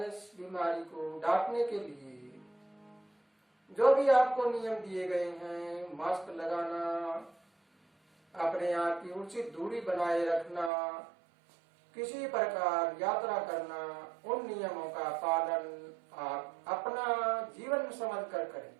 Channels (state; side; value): drops out; left; at 10.7 s